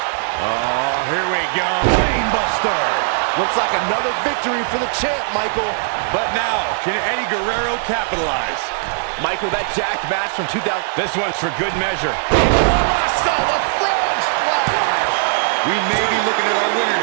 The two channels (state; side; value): silent; left; digital silence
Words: Oh, here we go. Brainbuster. Looks like another victory for the champ, Michael. But now, can Eddie Guerrero capitalize? Michael, that jacked match from 2000. This one's for good measure. I saw the frog splash. We may be looking at our winner